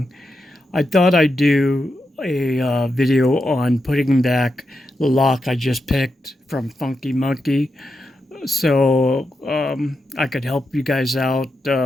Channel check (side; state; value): both; normal; correlation 0.86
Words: I thought I'd do a video on putting back the lock I just picked from Funky Monkey, so I could help you guys out